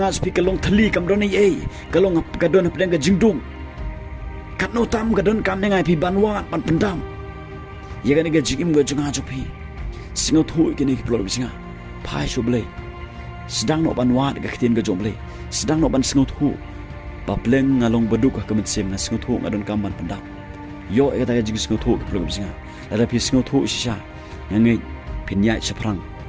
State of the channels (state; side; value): identical; both; correlation 1.00